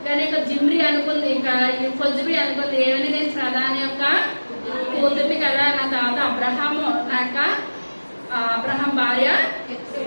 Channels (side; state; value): both; inverted; correlation -1.00